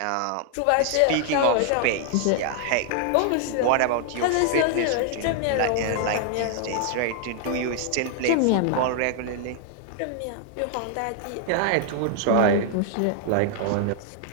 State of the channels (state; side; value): different; both; correlation 0.00